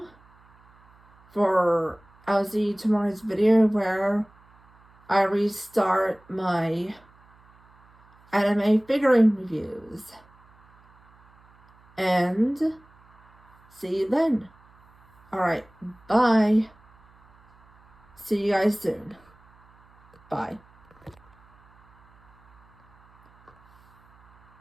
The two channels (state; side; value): noise; right; hum, 30 dB below the sound